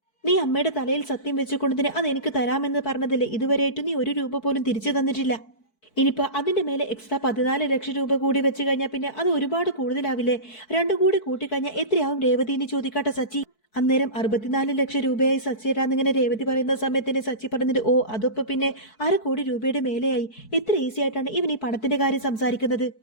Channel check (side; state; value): right; late; 4.6 ms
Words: നീ അമ്മയുടെ തലയിൽ സത്യം വെച്ചുകൊണ്ടതിന് അത് എനിക്ക് തരാമെന്ന് പറഞ്ഞതല്ലേ, ഇതുവരെയായിട്ട് നീ 1 രൂപ പോലും തിരിച്ചു തന്നിട്ടില്ല. ഇനിയിപ്പോ അതിന്റെ മേലെ എക്സ്ട്രാ 14 ലക്ഷം രൂപ കൂടി വെച്ച് കഴിഞ്ഞാൽ പിന്നെ അത് ഒരുപാട് കൂടുതലാവില്ലേ? 2 കൂടി കൂട്ടിക്കഴിഞ്ഞാൽ എത്രയാവും രേവതി എന്ന് ചോദിക്കാട്ടെ സച്ചി. അന്നേരം 64 ലക്ഷം രൂപയായി സച്ചിയേട്ടാന്നിങ്ങനെ രേവതി പറയുന്ന സമയത്തിന് സച്ചി പറഞ്ഞിട്ട്, ഓ അതൊപ്പം പിന്നെ 1/2 കോടി രൂപയുടെ മേലെയായി. എത്ര ഈസി ആയിട്ടാണ് ഇവൻ ഈ പണത്തിന്റെ കാര്യം സംസാരിക്കുന്നത്.